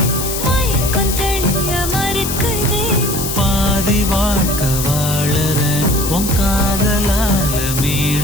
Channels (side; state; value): left; noise; hiss, 4 dB below the sound